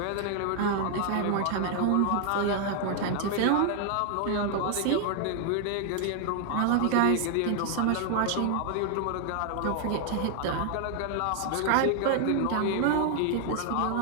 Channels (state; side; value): different; both; correlation 0.00